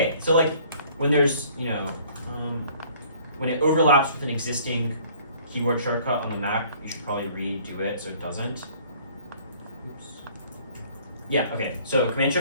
So like when there's, when it overlaps with an existing keyboard shortcut on the Mac, you should probably redo it so it doesn't. Oops. Yeah, okay. So Command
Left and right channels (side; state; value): both; inverted; correlation -0.55